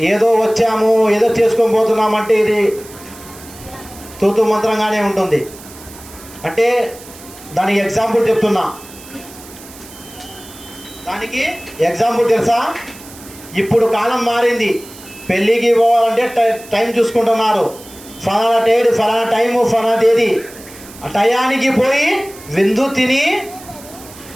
ఏదో వచ్చాము ఏదో చేసుకొని పోతున్నామంటే ఇది తూతు మంత్రంగానే ఉంటుంది. అంటే దానికి ఎగ్జాంపుల్ చెప్తున్నా. దానికి ఎగ్జాంపుల్ తెలుసా? ఇప్పుడు కాలం మారింది. పెళ్ళికి పోవాలంటే టైం చూసుకుంటున్నారు. ఫలానా డేట్, ఫలానా టైము, ఫలానా తేదీ. ఆ టయానికి పోయి విందు తిని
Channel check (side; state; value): right; noise; hiss, 19 dB below the sound